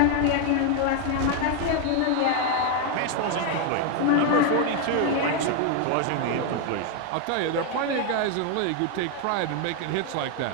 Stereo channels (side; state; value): both; different; correlation 0.01